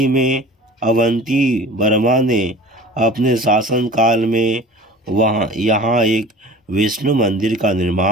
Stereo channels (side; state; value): both; normal; correlation 0.41